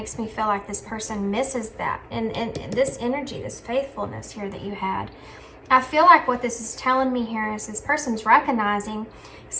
me feel like this person misses that. And this energy, this faithfulness here that you had. I feel like what this is telling me here is this person's recognizing,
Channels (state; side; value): identical; both; correlation 1.00